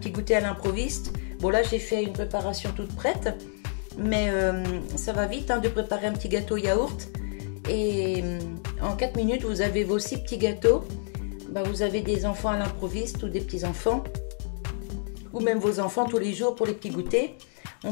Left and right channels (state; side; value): silent; right; 57 dB below the other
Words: goûter à l'improviste. Bon là j'ai fait une préparation toute prête, mais ça va vite hein, de préparer un petit gâteau yaourt. Et en 4 minutes vous avez vos 6 petits gâteaux. Bah, vous avez des enfants à l'improviste ou des petits enfants. Ou même vos enfants tous les jours pour les petits goûters.